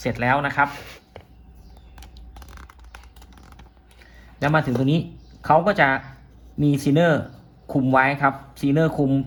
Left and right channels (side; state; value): both; identical; correlation 1.00